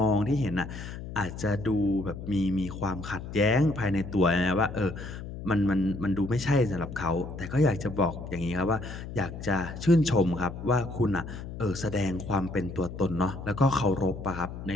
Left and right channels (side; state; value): left; noise; hum, 10 dB below the sound